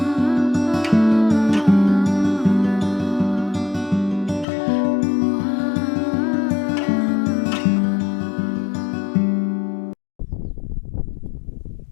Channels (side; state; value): right; drops out; at 4.5 s